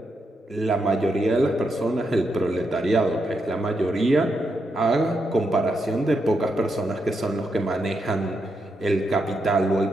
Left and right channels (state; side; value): normal; both; correlation 0.82